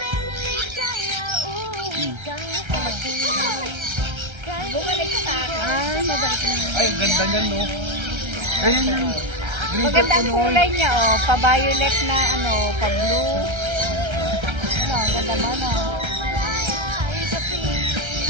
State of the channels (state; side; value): late; left; 1.3 ms